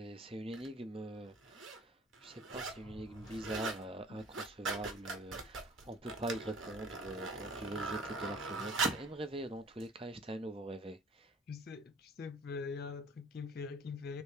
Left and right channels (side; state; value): both; normal; correlation 0.48